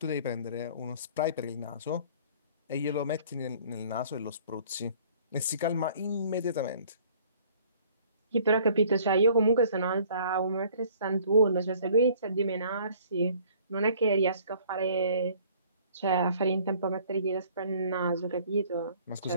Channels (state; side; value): inverted; both; correlation -0.55